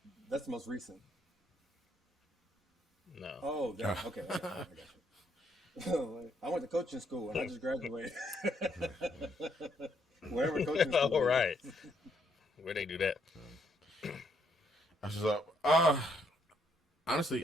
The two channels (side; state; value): both; normal; correlation 0.72